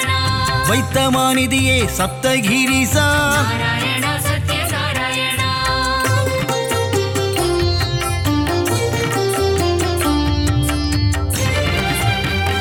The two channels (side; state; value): both; identical; correlation 1.00